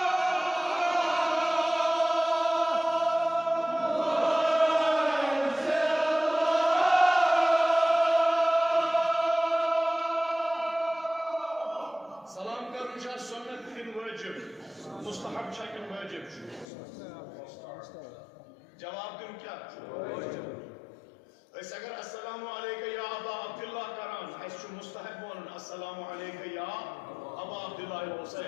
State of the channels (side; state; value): right; drops out; at 16.7 s